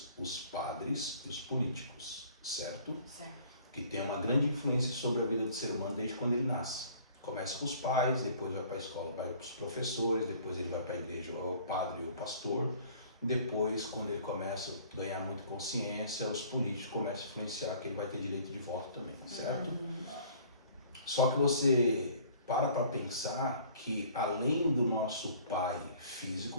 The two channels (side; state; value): both; inverted; correlation -0.53